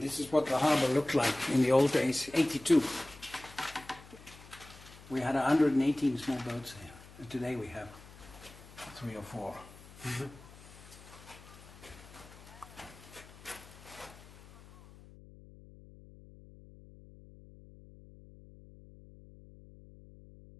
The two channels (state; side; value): noise; left; hum, 20 dB below the sound